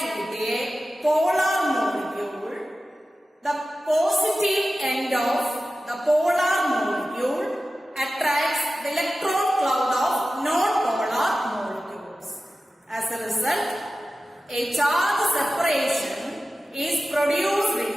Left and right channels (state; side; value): normal; both; correlation 0.95